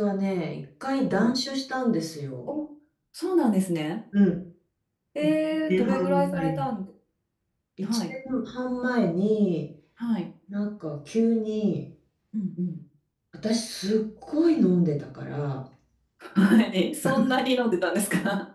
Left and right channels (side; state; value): both; identical; correlation 1.00